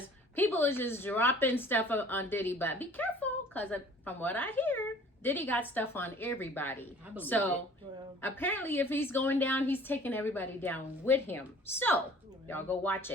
people are just dropping stuff on Diddy, but be careful. Cause from what I hear, Diddy got stuff on everybody. I believe So Well, apparently if he's going down, he's taking everybody down with him. So y'all go watch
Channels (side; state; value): both; normal; correlation 0.50